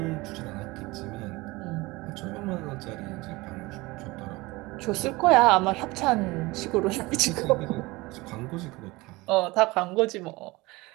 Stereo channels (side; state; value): left; quieter; 21.8 dB